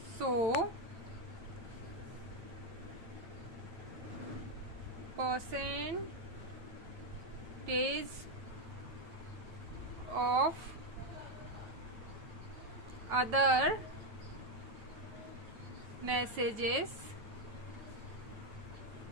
So percentage of other messages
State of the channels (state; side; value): late; left; 9.1 ms